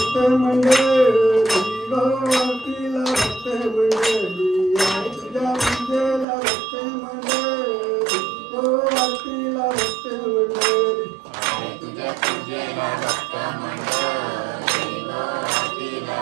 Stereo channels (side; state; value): left; drops out; at 6.2 s